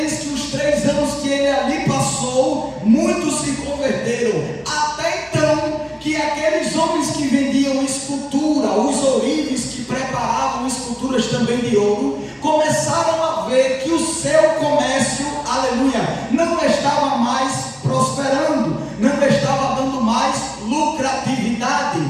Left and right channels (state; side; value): identical; both; correlation 1.00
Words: que os 3 anos que ele ali passou, muitos se converteram. Até então, que aqueles homens que vendiam escultura, os ourives que preparavam esculturas também de ouro, começaram a ver que o seu comércio, aleluia, não estava mais prosperando, não estava dando mais lucratividade.